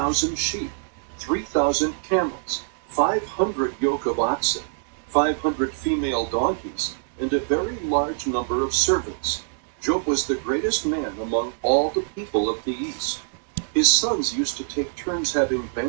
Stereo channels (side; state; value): left; silent; digital silence